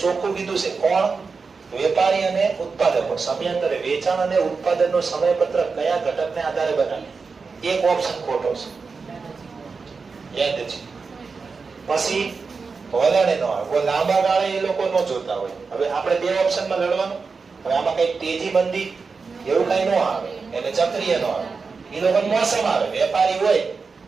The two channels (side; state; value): left; quieter; 4.8 dB